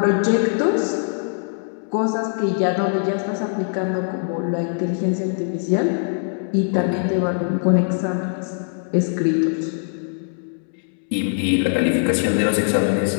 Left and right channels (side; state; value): right; silent; digital silence